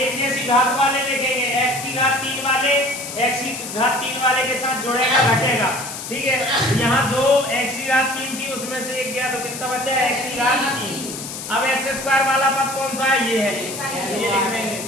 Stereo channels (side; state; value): left; noise; hiss, 9 dB below the sound